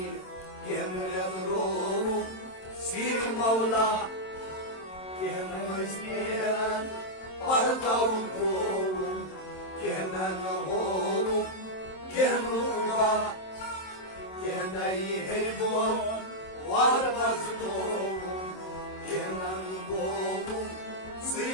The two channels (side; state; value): right; late; 27 ms